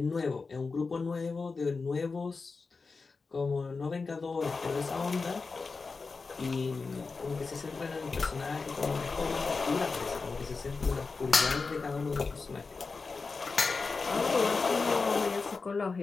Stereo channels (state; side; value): quieter; right; 4.4 dB